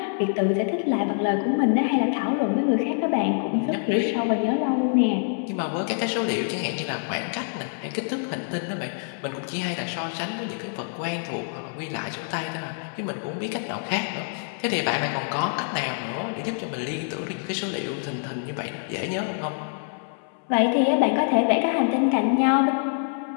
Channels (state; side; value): silent; right; 60 dB below the other